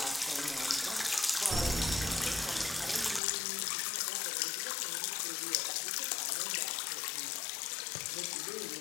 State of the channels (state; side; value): drops out; right; at 3.2 s